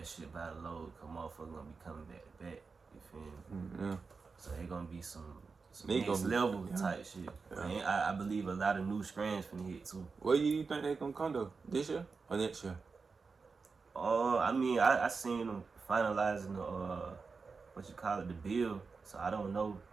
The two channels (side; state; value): left; quieter; 4.7 dB